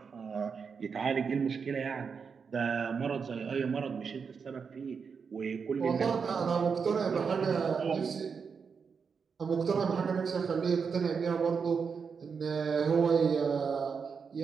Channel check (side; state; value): left; quieter; 5.9 dB